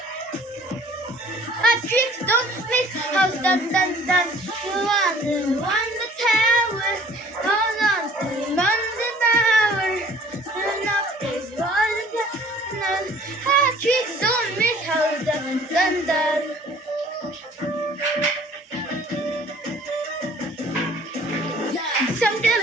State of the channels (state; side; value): normal; both; correlation 0.52